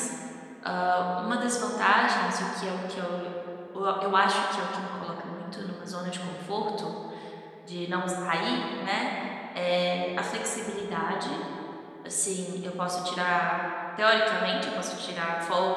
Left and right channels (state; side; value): identical; both; correlation 1.00